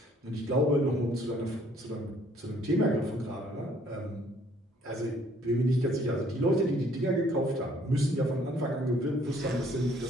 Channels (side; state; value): both; normal; correlation 0.62